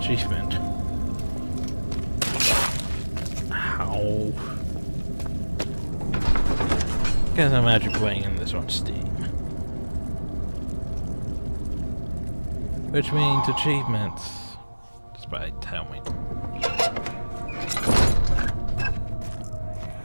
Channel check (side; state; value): both; inverted; correlation -1.00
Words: achievement. Ow. Guess I'm actually playing in this on Steam. Which means achievements. Despite tell me.